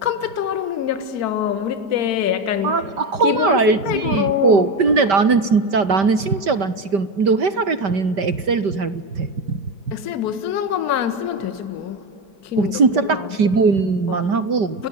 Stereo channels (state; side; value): late; left; 5.1 ms